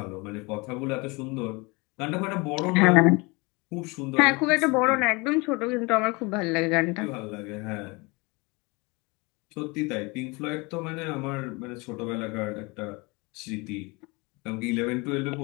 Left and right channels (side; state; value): right; quieter; 26.8 dB